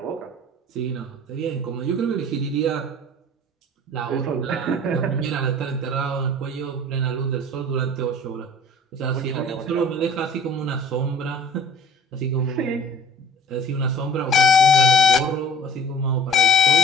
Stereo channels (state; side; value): normal; both; correlation 0.46